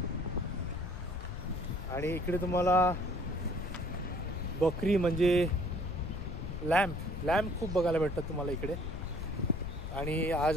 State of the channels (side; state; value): left; noise; rumble, 6 dB below the sound